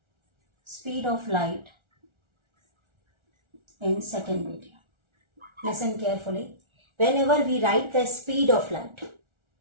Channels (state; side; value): late; left; 1.4 ms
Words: speed of light in second medium. Listen carefully. Whenever we write the speed of light,